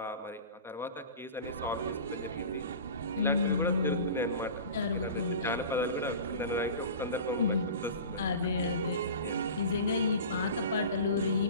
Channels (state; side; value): inverted; both; correlation -0.35